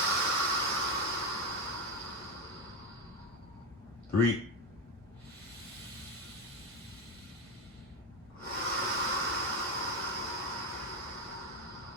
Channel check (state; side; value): normal; both; correlation 0.14